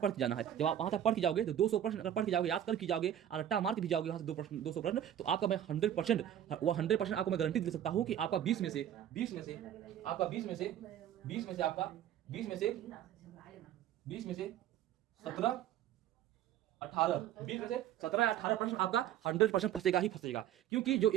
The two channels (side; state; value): left; quieter; 10.8 dB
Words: के जाना है। जब आप वहां तक पढ़ के जाओगे तो 200 प्रश्न अगर पढ़ के जाओगे, याद कर के जाओगे और रट्टा मार के भी जाओगे वहां से 200 प्रश्न, तो आपका मैं 100% आपको मैं गारंटी दे सकता हूं कि आपका 20 में से आपका 20 में से 17 18 20 में से 17-18 प्रश्न आपका 100% फंसेगा ही फंसेगा। क्योंकि जो